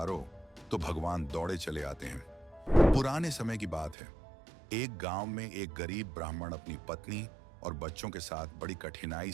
तो भगवान दौड़े चले आते हैं। पुराने समय की बात है। एक गांव में एक गरीब ब्राह्मण अपनी पत्नी और बच्चों के साथ बड़ी कठिनाई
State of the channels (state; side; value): drops out; left; at 4.0 s